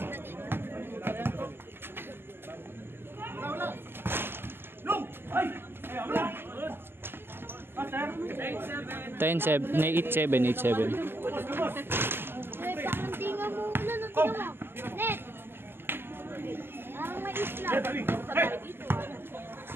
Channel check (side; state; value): left; late; 0.11 ms